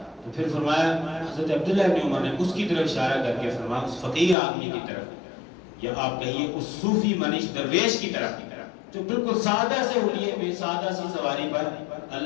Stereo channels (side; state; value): right; drops out; at 4.4 s